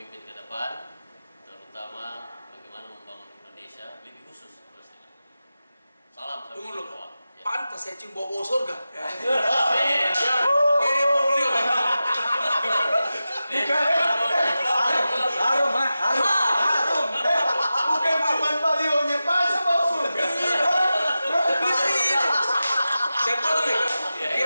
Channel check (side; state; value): both; inverted; correlation -0.93